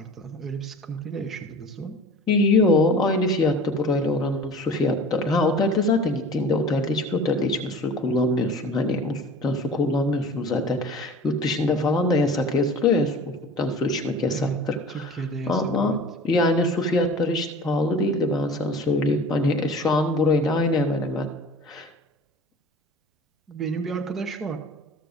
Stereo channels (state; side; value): normal; both; correlation 0.41